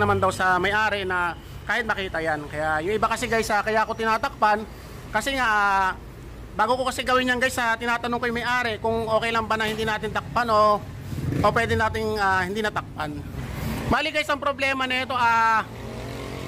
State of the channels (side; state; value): both; identical; correlation 1.00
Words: daw sa may-ari na kahit makita yan. Kaya yung iba kasi guys, kaya ako tinatakpan kasi nga bago ko kasi gawin yan guys, tinatanong ko yung may-ari kung okay lang ba na hindi natin takpan o pwede nating hindi natakpan. Bali guys, ang problema na ito,